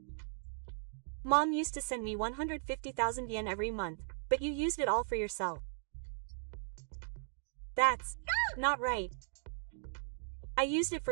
Mom used to send me 150,000 yen every month, but you used it all for yourself. That's not right. I used it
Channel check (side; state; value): left; silent; digital silence